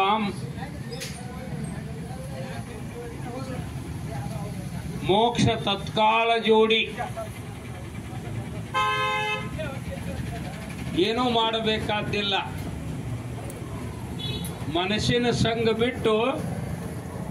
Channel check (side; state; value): both; identical; correlation 1.00